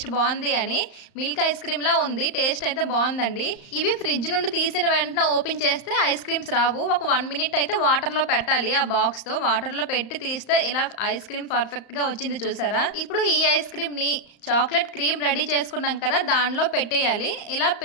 బాగుంది అని. మిల్క్ ఐస్ క్రీమ్లా ఉంది, టేస్ట్ అయితే బాగుందండి. ఇవి ఫ్రిడ్జ్ నుండి తీసిన వెంటనే ఓపెన్ చేస్తే ఐస్ క్రీమ్స్ రావు. ఒక 1 మినిట్ అయితే వాటర్లో పెట్టాలి. ఆ బాక్స్తో వాటర్లో పెట్టి తీస్తే ఇలా ఐస్ క్రీమ్ పర్ఫెక్ట్గా వచ్చింది. చూసారా? ఇప్పుడు ఈ ఐస్ క్రీమ్ని చాక్లెట్ క్రీమ్ రెడీ చేసుకున్నాం కదా, దానిలో పెట్టేయాలి. ఇలా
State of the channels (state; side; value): late; right; 35 ms